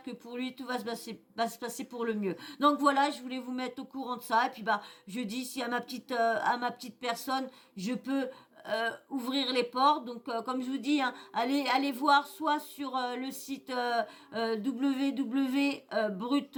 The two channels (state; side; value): identical; both; correlation 1.00